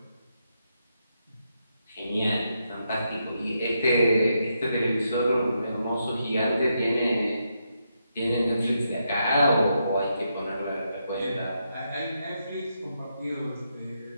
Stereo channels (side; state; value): both; inverted; correlation -0.82